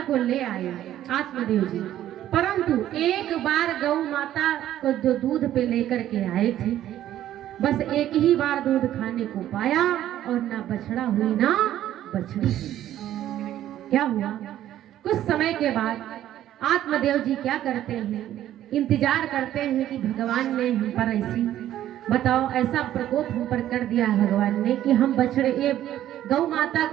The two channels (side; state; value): left; quieter; 12.3 dB